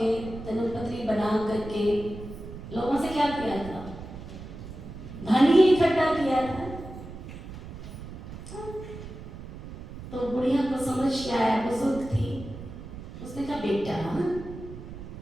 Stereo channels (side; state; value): right; noise; rumble, 12 dB below the sound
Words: जन्मपत्री बना करके लोगों से क्या किया था, धन ही इकट्ठा किया था। तो बुढ़िया को समझ के आया, बुजुर्ग थी, उसने कहा बेटा